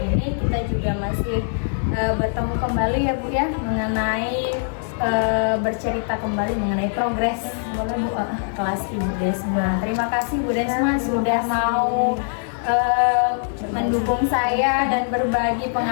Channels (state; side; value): silent; right; digital silence